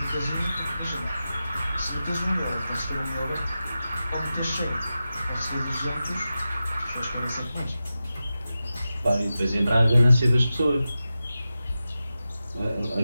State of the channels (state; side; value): inverted; both; correlation -0.93